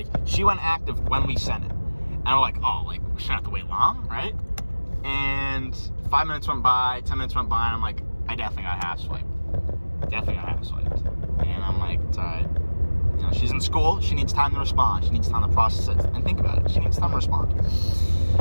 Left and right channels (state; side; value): inverted; both; correlation -1.00